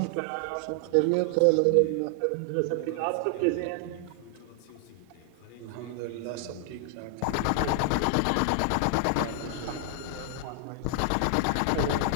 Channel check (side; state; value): both; different; correlation 0.00